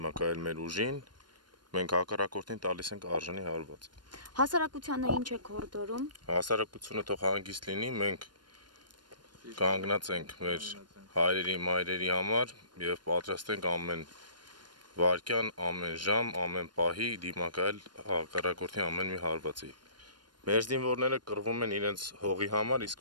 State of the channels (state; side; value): late; left; 0.71 ms